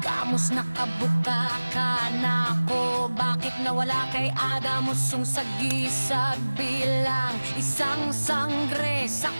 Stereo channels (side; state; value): both; inverted; correlation -1.00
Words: Kamus nakabuka ka na ako. Bakit nawala kay Adamus yung sagisag bilang isang sangre sa